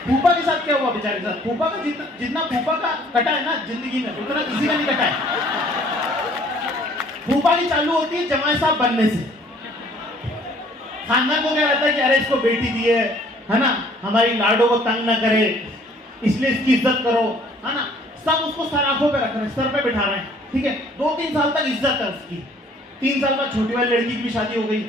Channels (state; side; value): normal; both; correlation 0.58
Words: फूफा के साथ क्या हुआ बेचारे के साथ? फूफा का जितना फूफा का कटा है ना जिंदगी में, उतना किसी का नहीं कटा है। फूफा की चालू होती है जमाई साहब बनने से। खानदान को क्या रहता है कि अरे इसको बेटी दी है ना, हमारी लाडो को तंग ना करे, इसलिए इसकी इज्जत करो, है ना। सब उसको सराखों पे रख रहे हैं, सर पे बिठा रहे हैं, ठीक है। 2-3 साल तक इज्जत है उसकी। 3 साल बाद छोटी वाली लड़की की भी शादी हो गई।